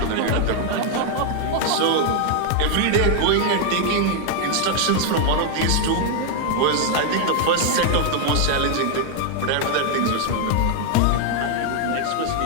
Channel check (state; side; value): different; both; correlation 0.00